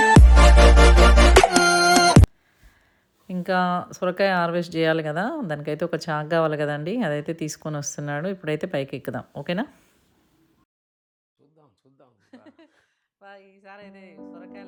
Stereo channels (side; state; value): both; identical; correlation 1.00